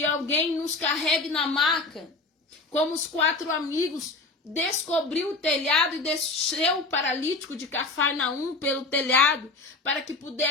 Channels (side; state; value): right; quieter; 3.5 dB